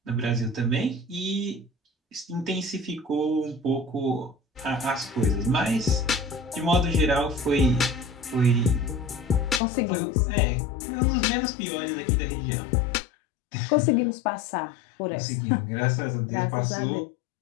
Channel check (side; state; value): right; drops out; at 9.6 s